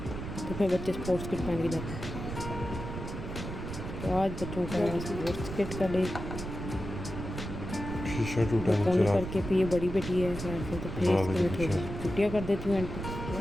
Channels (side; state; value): right; noise; rumble, 7 dB below the sound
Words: तो फिर बच्चे स्पोर्ट्स किट पहन के जाते हैं। तो आज बच्चों का स्पोर्ट्स किट का डे पोनी करके, फिर ये बड़ी बेटी है खैर से, तो फिर इसके मैं थोड़ी छुट्टियाँ कर देती हूँ एंड